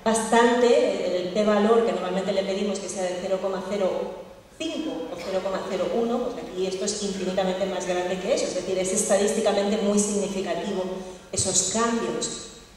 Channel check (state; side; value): identical; both; correlation 1.00